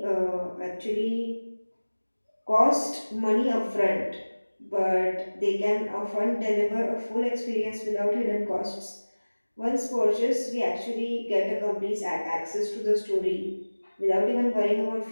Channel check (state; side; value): inverted; both; correlation -1.00